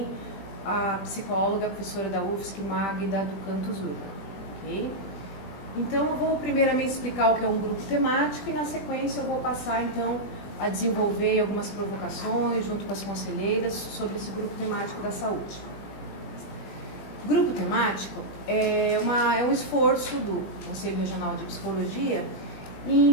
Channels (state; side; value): late; right; 20 ms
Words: a psicóloga, a professora da UFSC, Magda do Canto Zurba, ok? Então, eu vou primeiramente explicar o que é um grupo temático e, na sequência, eu vou passar, então, a desenvolver algumas provocações junto com as conselheiras sobre esse grupo temático da saúde. O grupo temático é um esforço do Conselho Regional de Psicologia